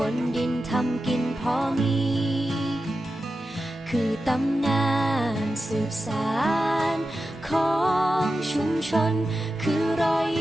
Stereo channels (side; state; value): both; normal; correlation 0.92